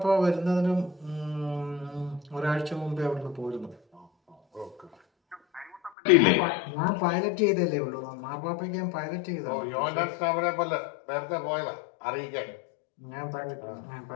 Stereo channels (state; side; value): drops out; right; at 5.9 s